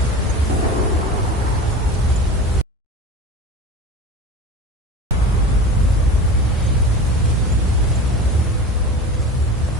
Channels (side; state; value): both; normal; correlation 0.33